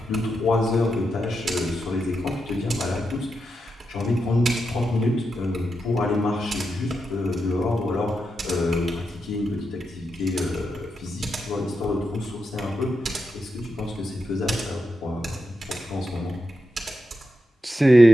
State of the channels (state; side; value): normal; both; correlation 0.86